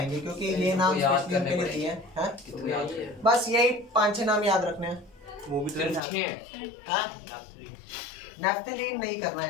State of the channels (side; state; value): right; drops out; at 6.0 s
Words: क्योंकि ये नाम स्पेशली उनके लिए दिए हैं। हाँ? कितने याद है? बस यही 5-6 नाम याद रखने हैं। वो भी तो अच्छे हैं। हाँ? नैप्थलीन। नैफ्थलीन नहीं करना है